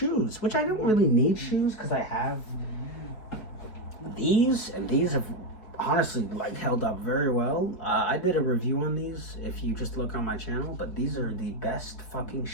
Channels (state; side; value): late; right; 4.6 ms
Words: which I don't really need shoes because I have these, and these have honestly like held up very well. I did a review on these if you just look on my channel, but these are the best fucking